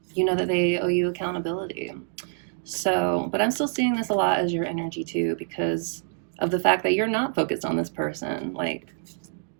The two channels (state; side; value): silent; left; digital silence